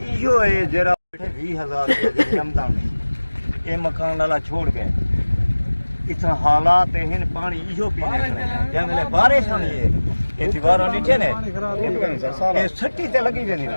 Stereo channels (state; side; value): inverted; both; correlation -1.00